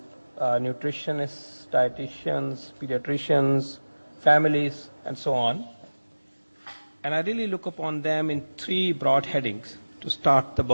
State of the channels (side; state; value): both; inverted; correlation -1.00